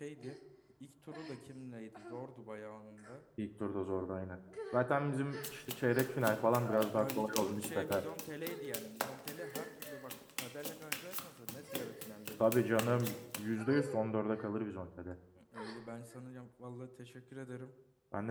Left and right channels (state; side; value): identical; both; correlation 1.00